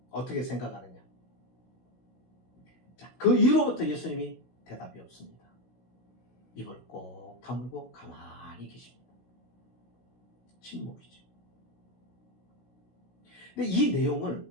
어떻게 생각하느냐? 자, 그 이후로부터 예수님이 대답이 없습니다. 입을 꼭 다물고 가만히 계십니다. 침묵이죠. 근데 이 내용을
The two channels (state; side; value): late; right; 16 ms